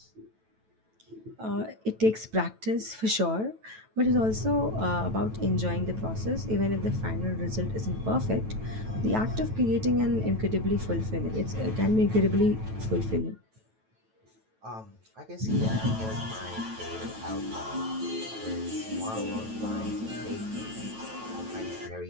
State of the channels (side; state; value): left; late; 9.1 ms